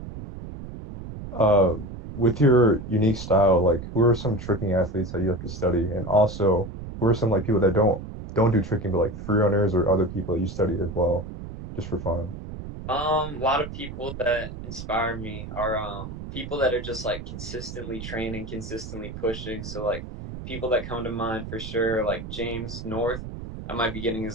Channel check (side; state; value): right; noise; rumble, 10 dB below the sound